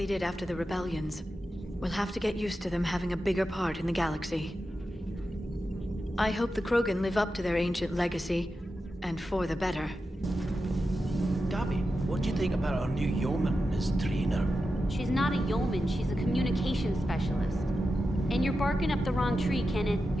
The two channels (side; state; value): both; normal; correlation 0.90